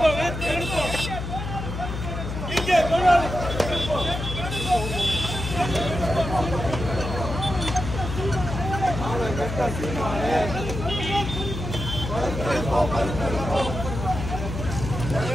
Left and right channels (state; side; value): noise; left; hum, 6 dB below the sound